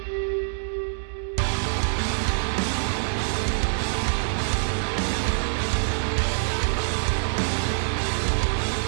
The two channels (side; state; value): left; silent; digital silence